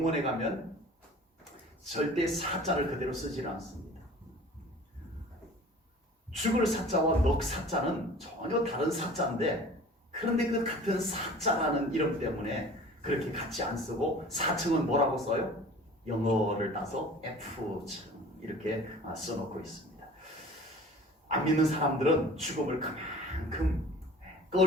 가면 절대 사자를 그대로 쓰질 않습니다. 죽을 사자와 넋 사자는 전혀 다른 사자인데, 그런데 그 같은 사자라는 이름 때문에 그렇게 같이 안 쓰고 사층은 뭐라고 써요? 영어를 따서 F층 이렇게 써놓고 있습니다. 안 믿는 사람들은 죽음을 그만큼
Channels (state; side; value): normal; both; correlation 0.44